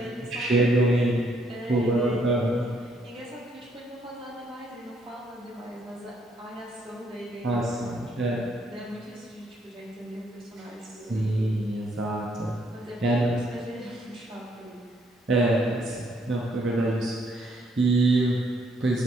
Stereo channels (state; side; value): normal; both; correlation 0.70